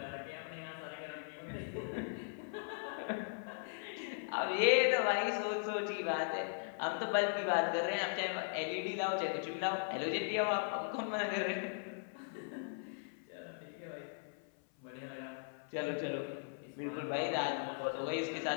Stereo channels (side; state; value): right; silent; 52 dB below the other